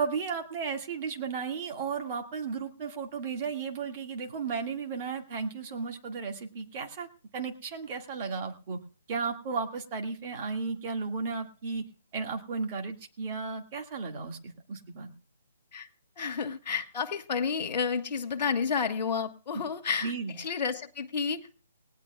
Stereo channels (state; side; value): inverted; both; correlation -0.47